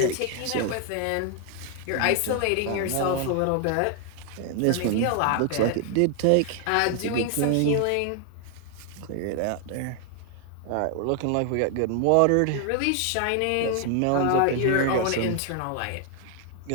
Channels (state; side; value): different; both; correlation 0.00